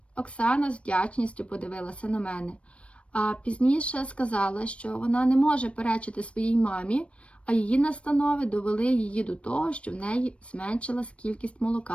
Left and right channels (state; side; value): late; right; 0.061 ms